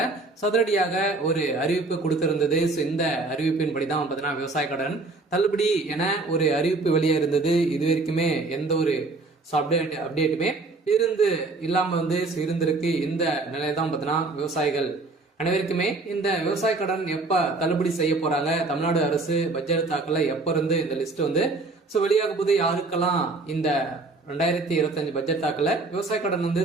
சதுரடியாக ஒரு அறிவிப்பு கொடுத்திருந்தது. இந்த அறிவிப்பின்படி தான் பார்த்தீங்கன்னா விவசாய கடன் தள்ளுபடி என ஒரு அறிவிப்பு வெளியே இருந்தது. இது வரைக்குமே எந்த ஒரு அப்டேட்டுமே இல்லாமல் வந்து இருந்திருக்கு. இந்த நிலையை தான் பார்த்தீங்கன்னா விவசாயிகள் அனைவருக்குமே இந்த விவசாய கடன் எப்ப தள்ளுபடி செய்ய போறாங்க, தமிழ்நாடு அரசு பட்ஜெட் தாக்கல எப்ப இருந்து இந்த லிஸ்ட் வந்து வெளியாக போது, யாருக்கெல்லாம் இந்த 2025 பட்ஜெட் தாக்கல விவசாய கடன் வந்து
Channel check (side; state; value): left; quieter; 3.4 dB